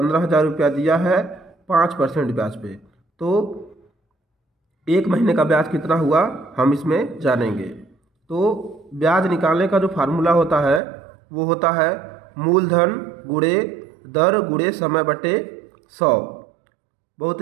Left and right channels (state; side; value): drops out; left; at 10.8 s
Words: रुपया दिया है 5% ब्याज पे। तो एक महीने का ब्याज कितना हुआ हम इसमें जानेंगे। तो ब्याज निकालने का जो फार्मूला होता है वो होता है मूलधन गुणे दर गुणे समय बटे 100। बहुत